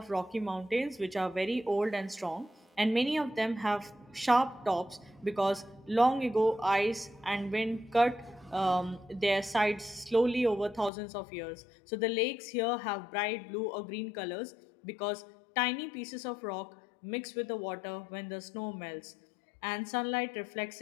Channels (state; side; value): drops out; right; at 10.9 s